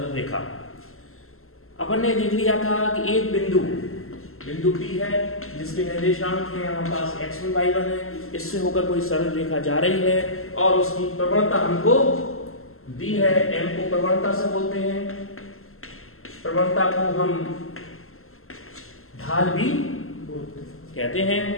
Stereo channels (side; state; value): right; late; 0.62 ms